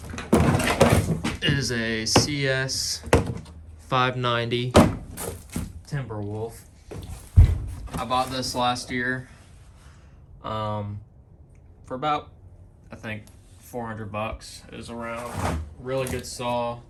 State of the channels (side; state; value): both; identical; correlation 1.00